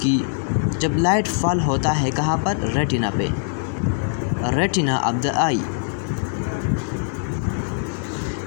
लाइट फॉल होता है कहाँ पर? रेटिना पे, रेटिना ऑफ द आई।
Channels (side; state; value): right; silent; digital silence